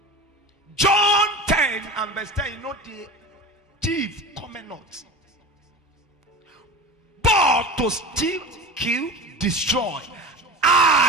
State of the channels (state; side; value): normal; both; correlation 0.31